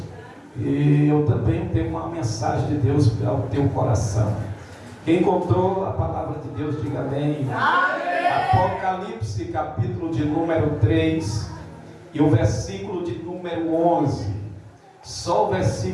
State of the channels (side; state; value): both; identical; correlation 1.00